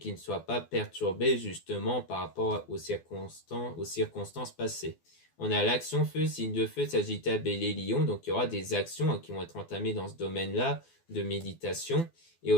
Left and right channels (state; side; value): late; right; 12 ms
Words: ne soient pas perturbées justement par rapport aux circonstances passées. On a l'action feu, signe de feu, Sagittaire, Bélier, Lion, donc il y aura des actions qui vont être entamées dans ce domaine-là de méditation, et